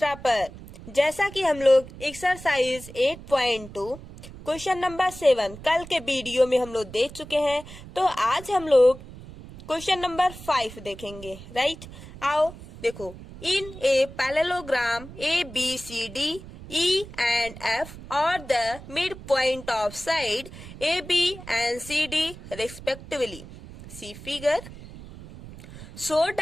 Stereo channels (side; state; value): right; noise; rumble, 15 dB below the sound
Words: पर। जैसा कि हम लोग एक्सरसाइज 8.2 क्वेश्चन नंबर 7 कल के वीडियो में हम लोग देख चुके हैं, तो आज हम लोग क्वेश्चन नंबर 5 देखेंगे। राइट, आओ देखो। In a parallelogram ABCD E and F are the midpoint of side AB and CD respectively. See figure. So